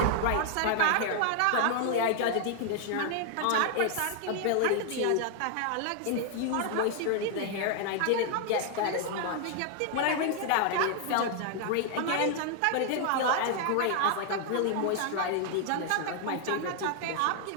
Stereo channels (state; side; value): different; both; correlation 0.00